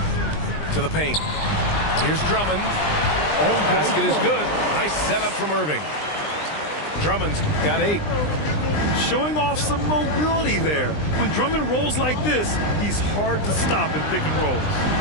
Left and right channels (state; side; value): late; right; 20 ms